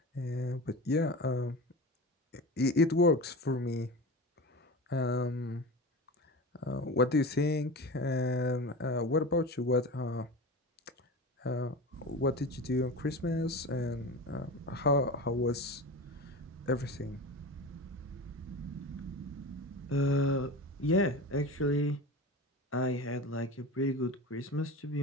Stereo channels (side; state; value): both; normal; correlation 0.30